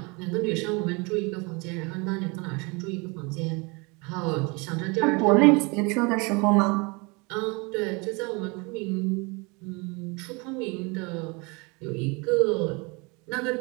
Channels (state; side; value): quieter; left; 28.7 dB